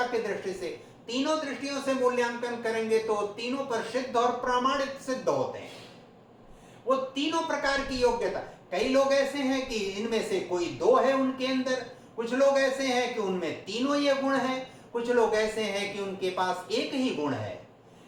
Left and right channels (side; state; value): both; identical; correlation 1.00